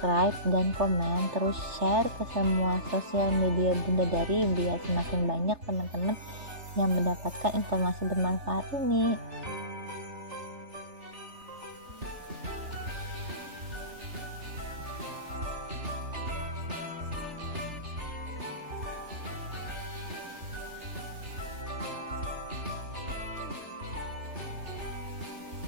dan komen, terus share ke semua sosial media Bunda Dari biar semakin banyak teman-teman yang mendapatkan informasi bermanfaat ini.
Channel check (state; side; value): late; left; 3.4 ms